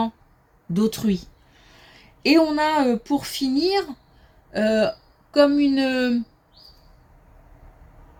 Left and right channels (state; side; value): identical; both; correlation 1.00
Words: d'autrui. Et on a, pour finir, comme